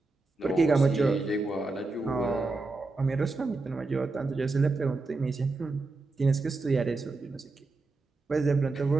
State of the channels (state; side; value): quieter; left; 3.5 dB